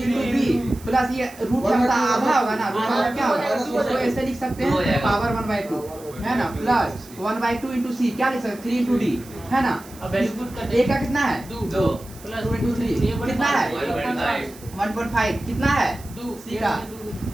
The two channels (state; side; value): noise; right; hiss, 21 dB below the sound